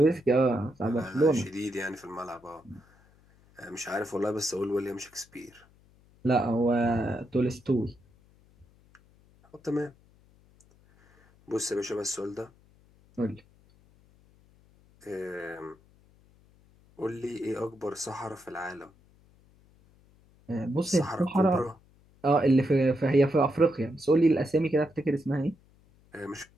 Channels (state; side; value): noise; left; hum, 30 dB below the sound